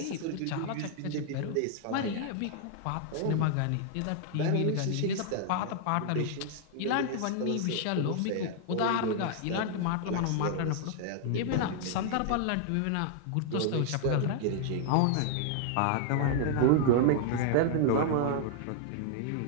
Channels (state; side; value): different; both; correlation -0.01